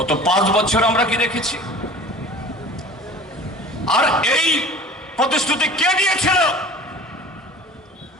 5 বছর আমরা কি দেখেছি? আর এই প্রতিশ্রুতি কে দিয়েছিল?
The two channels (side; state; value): both; normal; correlation 0.42